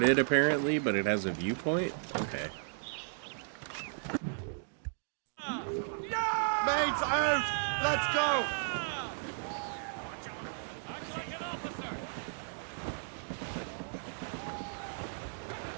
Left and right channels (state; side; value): silent; left; digital silence